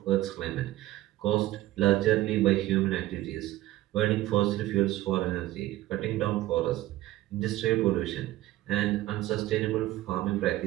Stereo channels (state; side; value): quieter; left; 16.1 dB